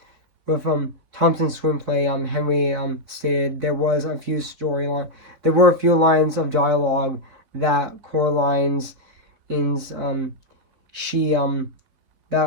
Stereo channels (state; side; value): late; left; 4.6 ms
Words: Thompson's screenplay, Henry stated there were a few lines of dialogue that Coraline's